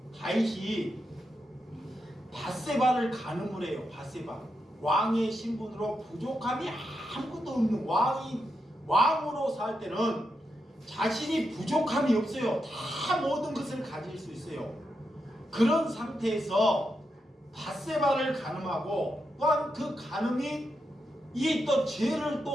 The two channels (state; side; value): normal; both; correlation 0.85